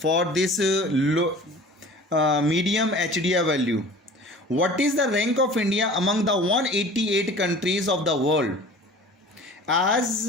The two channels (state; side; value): normal; both; correlation 0.43